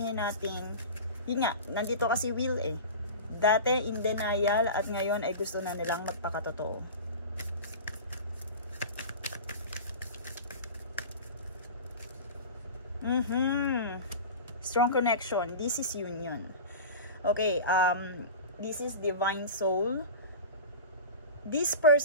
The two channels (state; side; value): inverted; both; correlation -0.32